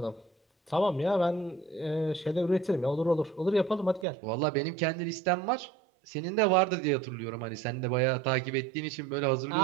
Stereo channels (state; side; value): drops out; left; at 4.0 s